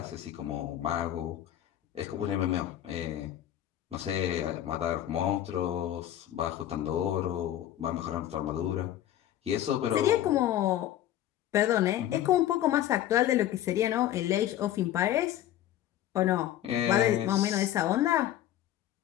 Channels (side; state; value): right; quieter; 12.3 dB